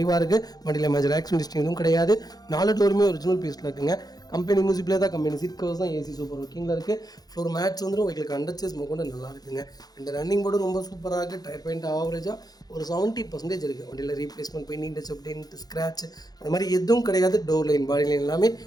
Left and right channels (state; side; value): late; right; 0.19 ms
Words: இருக்குது. வண்டியில் மேஜர் ஆக்சிடென்ட் எதுவும் கிடையாது. 4 டோருமே ஒரிஜினல் பீஸில் இருக்குங்க. கம்பெனி மியூசிக் பிளேயர் தான், கம்பெனி சீட் கவர்ஸ் தான், ஏசி சூப்பர் ஒர்க்கிங்கில் இருக்குது. ஃப்ளோர் மேட்ச் வந்துடும். உங்களுக்கு அண்டர் சேஸ் கொண்டு நல்லா இருக்குங்க. 2 ரன்னிங் போர்டு ரொம்ப சூப்பராக இருக்குது. டயர் பாயிண்ட் ஆவரேஜாக ஒரு 70% இருக்குது. வண்டியில் replacement, painting touch up, dent, scratch அது மாதிரி எதுவும் கிடையாது. டோர் லைன், பாடி லைன் எல்லாமே